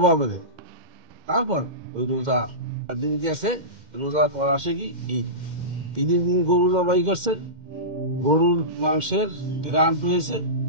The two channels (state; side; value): late; left; 2.1 ms